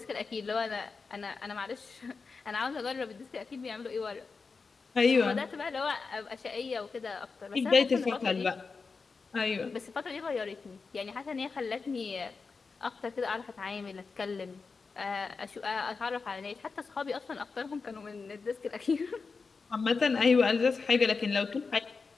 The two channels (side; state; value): right; quieter; 4.6 dB